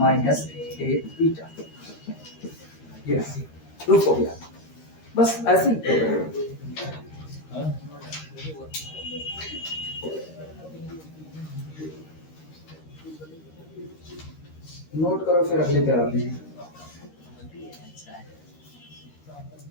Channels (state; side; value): late; right; 13 ms